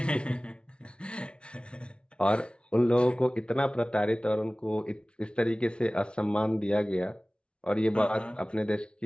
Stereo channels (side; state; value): right; late; 0.058 ms